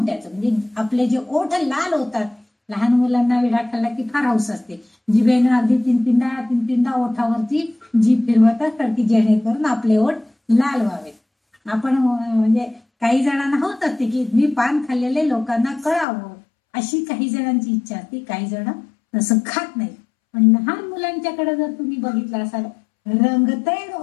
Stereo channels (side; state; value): right; drops out; at 16.1 s